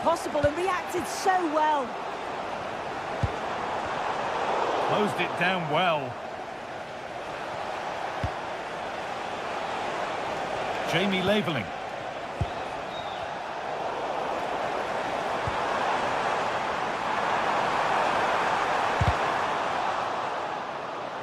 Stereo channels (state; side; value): identical; both; correlation 1.00